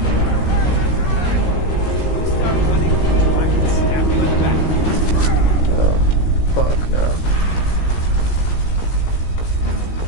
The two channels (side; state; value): right; late; 17 ms